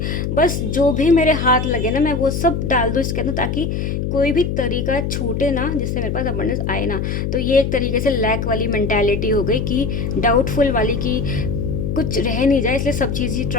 बस जो भी मेरे हाथ लगे ना मैं वो सब डाल दूँ इसके अंदर, ताकि कोई भी तरीका छूटे ना जिससे मेरे पास अबंडेंस आए ना। तो ये एक तरीके से लैक वाली मेंटालिटी हो गई, कि डाउटफुल वाली, कि कुछ रह नहीं जाए, इसलिए सब चीज़ ही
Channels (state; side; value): noise; left; hum, 2 dB below the sound